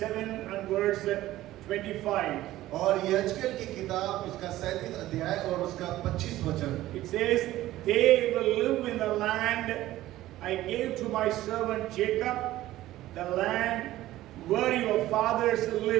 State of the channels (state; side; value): quieter; left; 15.3 dB